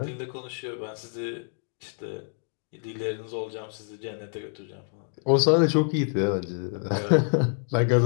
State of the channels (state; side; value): silent; right; 60 dB below the other